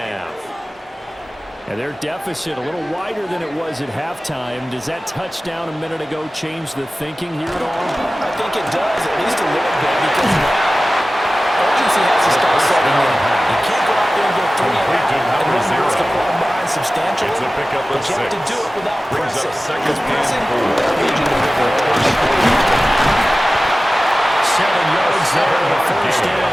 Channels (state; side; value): normal; both; correlation 0.96